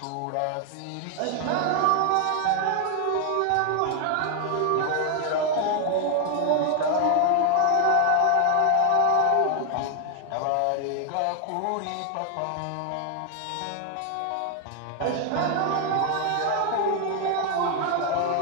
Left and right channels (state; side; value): different; both; correlation 0.00